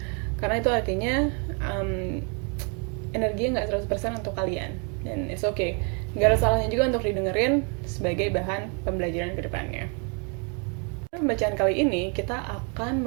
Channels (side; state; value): left; quieter; 36.6 dB